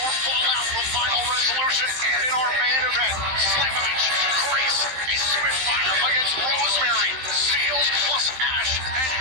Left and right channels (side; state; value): left; late; 15 ms